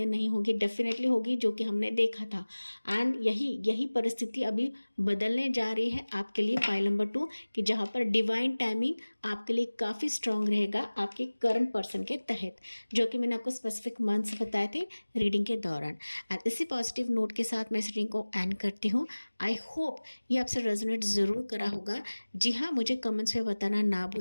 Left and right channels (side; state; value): both; inverted; correlation -1.00